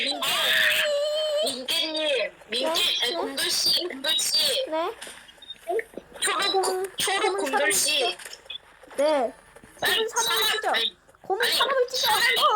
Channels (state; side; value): identical; both; correlation 1.00